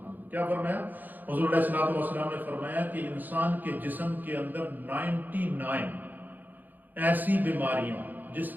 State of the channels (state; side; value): late; left; 0.086 ms